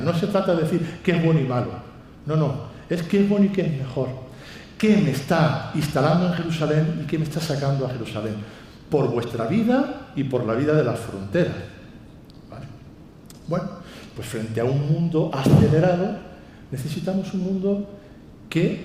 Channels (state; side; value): identical; both; correlation 1.00